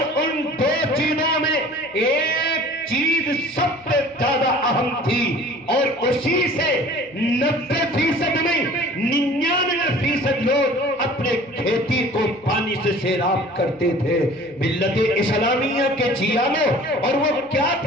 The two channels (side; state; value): right; noise; hum, 28 dB below the sound